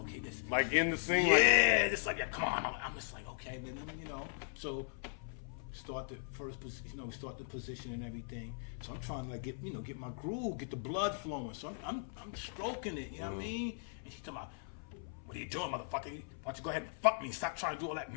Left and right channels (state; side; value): silent; right; 52 dB below the other